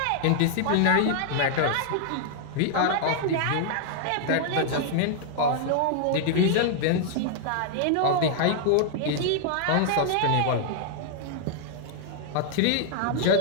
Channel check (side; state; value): both; different; correlation 0.00